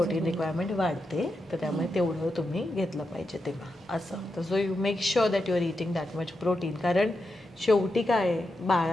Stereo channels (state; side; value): normal; both; correlation 0.87